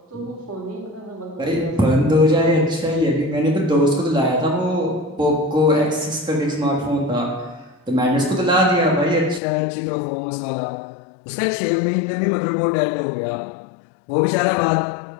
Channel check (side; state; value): right; drops out; at 9.4 s